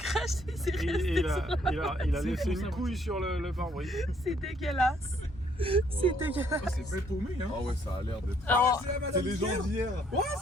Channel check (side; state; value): both; normal; correlation 0.67